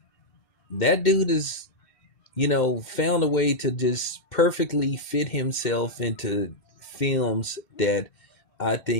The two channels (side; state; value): right; late; 2.7 ms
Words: That dude is found a way to just perfectly fit himself into films that I